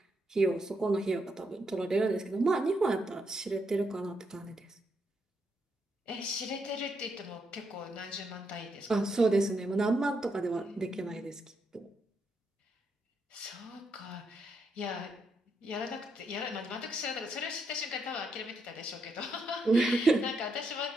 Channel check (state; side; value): normal; both; correlation 0.80